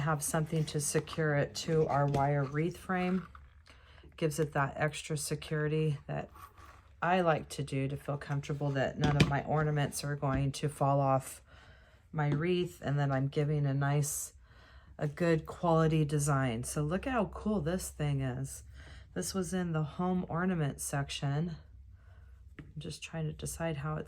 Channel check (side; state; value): both; identical; correlation 1.00